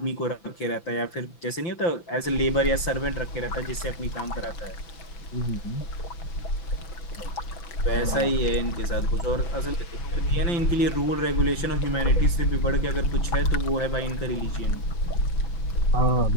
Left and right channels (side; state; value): right; late; 5.9 ms